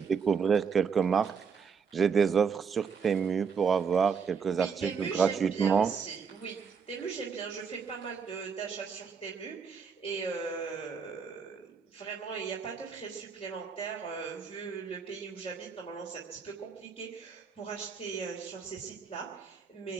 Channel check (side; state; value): left; quieter; 6.1 dB